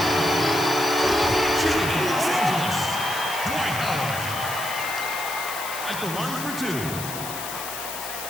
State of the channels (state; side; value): noise; left; hiss, 8 dB below the sound